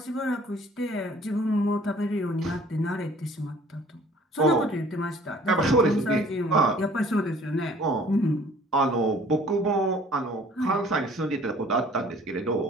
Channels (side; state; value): both; normal; correlation 0.53